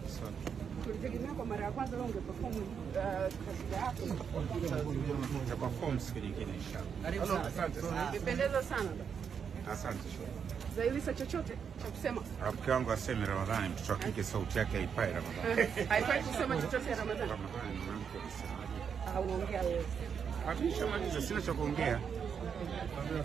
Tulitegemea kwa mara ya kwanza leo ungeperform kasida yako. Tutaperform siku nyingine inshallah. Asante sana. Imependeza sana. Asante. Zailisa chochote cha kusema? Rafiki wangu aseme Ramadhani, mtoto wa kike sauti yake haipai Ramadhani. Haifai kusema chochote ya Ramadhani. Ramadhani mwanamke anasema. Unaongea wewe. Hakishamaliza, sina cha kuongea.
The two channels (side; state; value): left; quieter; 7.0 dB